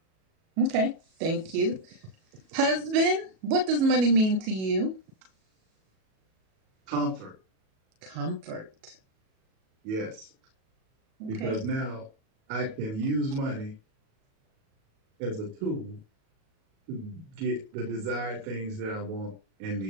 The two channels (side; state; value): left; late; 37 ms